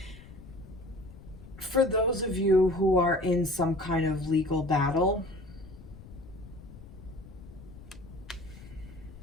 For those of you who are in some kind of legal battle,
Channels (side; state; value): left; noise; rumble, 17 dB below the sound